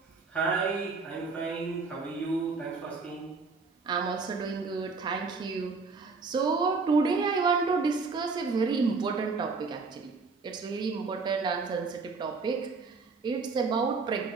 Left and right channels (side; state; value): left; quieter; 4.4 dB